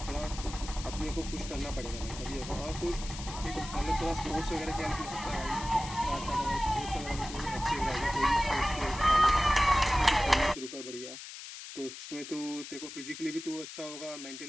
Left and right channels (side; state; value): left; noise; hiss, 11 dB below the sound